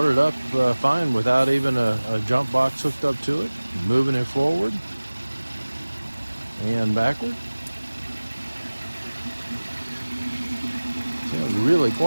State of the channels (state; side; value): inverted; both; correlation -1.00